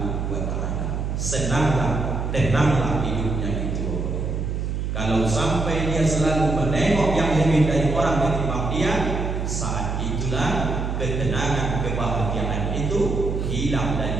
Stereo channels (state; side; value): noise; right; hum, 2 dB below the sound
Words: wa ta'ala. Senanglah, tenanglah hidupnya itu. Kalau sampai dia selalu menengok yang lebih dari orang ketimbang dia, saat itulah ketenangan, kebahagiaan itu hilang